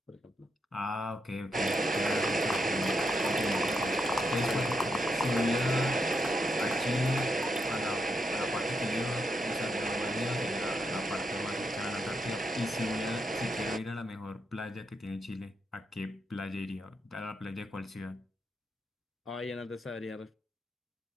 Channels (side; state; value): both; normal; correlation 0.81